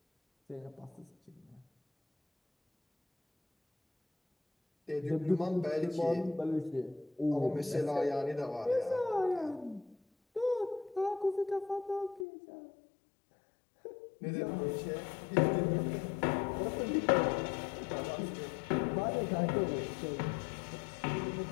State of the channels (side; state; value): right; drops out; at 12.2 s